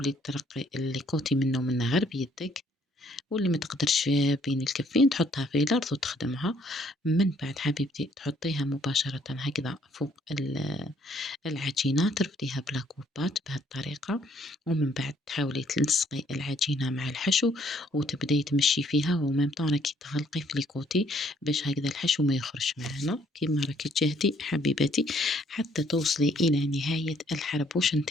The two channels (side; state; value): both; normal; correlation 0.65